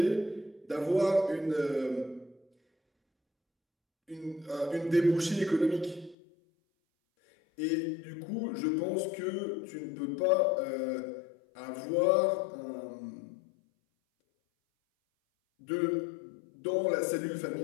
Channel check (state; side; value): drops out; right; at 6.2 s